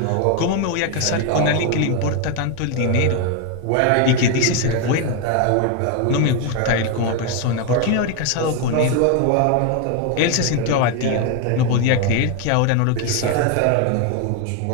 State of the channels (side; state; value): both; different; correlation 0.01